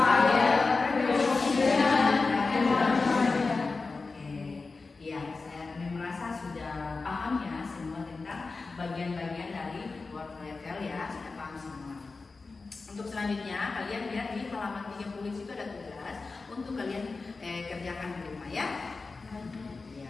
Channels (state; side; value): quieter; right; 4.0 dB